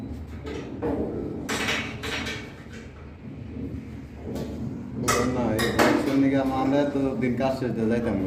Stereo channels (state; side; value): identical; both; correlation 1.00